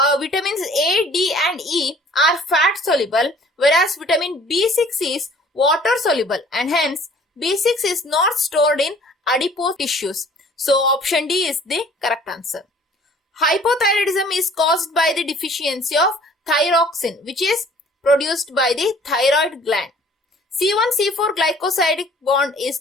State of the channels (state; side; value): normal; both; correlation 0.53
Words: Vitamins A, D and E are fat soluble, whereas vitamin B6 is water soluble, and hence B6 is not stored in adipose tissues. So option D is the correct answer. Hypothyroidism is caused by the deficiency of thyroxine, which is produced by the thyroid gland. C1-C4 glycosidic bond